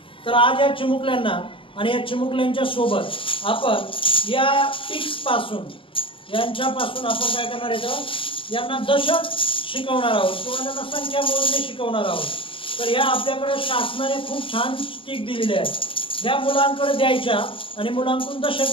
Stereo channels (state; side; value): late; right; 0.25 ms